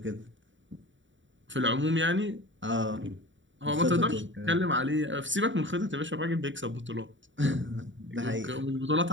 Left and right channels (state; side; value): late; left; 0.55 ms